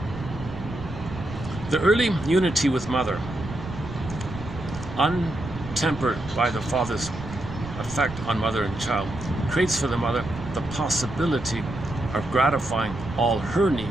The early unity with mother, untempered by the father's effect on mother and child, creates for the mother the possibility of gratifying all her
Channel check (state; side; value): noise; right; rumble, 11 dB below the sound